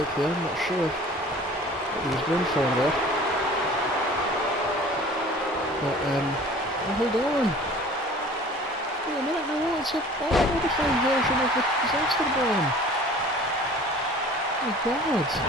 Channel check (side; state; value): both; normal; correlation 0.46